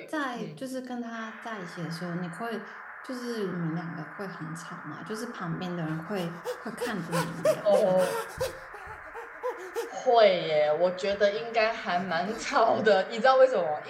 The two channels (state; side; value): identical; both; correlation 1.00